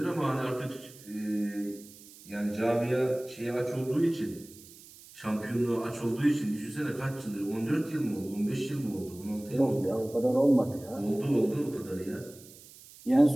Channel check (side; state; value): right; noise; hiss, 20 dB below the sound